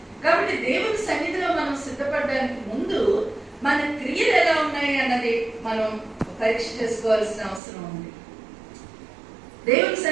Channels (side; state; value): left; drops out; at 7.6 s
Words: కాబట్టి దేవుని సన్నిధిలో మనం సిద్ధపడడానికి ముందు మన క్రియలు ఎలా ఉన్నాయి అన్నది మనం పరీక్ష చేసుకోవాల్సిన అవసరం ఉంది. దేవుని